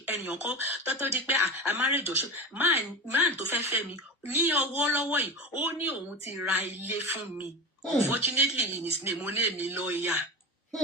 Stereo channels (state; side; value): normal; both; correlation 0.26